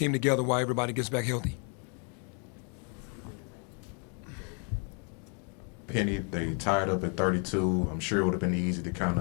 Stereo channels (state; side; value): quieter; right; 39.5 dB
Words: together while everybody gets back healthy. Penny, they tied up at 32. I'm sure it would have been easy to kind